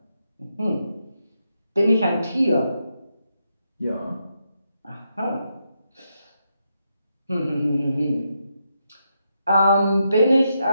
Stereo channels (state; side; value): inverted; both; correlation -0.82